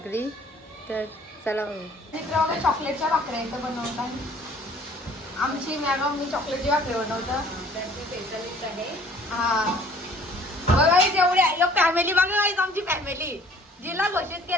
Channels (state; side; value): normal; both; correlation 0.54